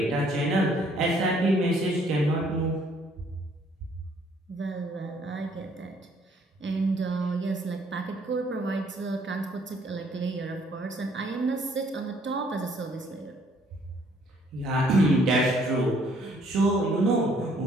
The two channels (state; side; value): normal; both; correlation 0.64